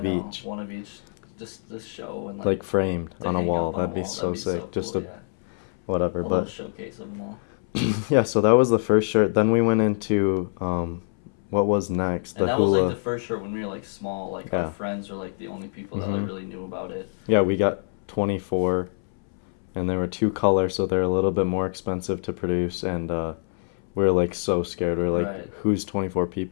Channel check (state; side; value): silent; right; 62 dB below the other